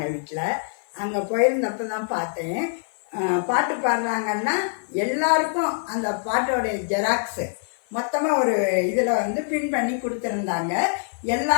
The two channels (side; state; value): right; silent; 55 dB below the other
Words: வீட்டில். அங்கே போயிருந்தப்போ தான் பார்த்தேன். பாட்டு பாடுறாங்கன்னா எல்லாருக்கும் அந்த பாட்டோடைய ஜெராக்ஸு மொத்தமாக ஒரு இதில் பின் பண்ணி கொடுத்துருந்தாங்க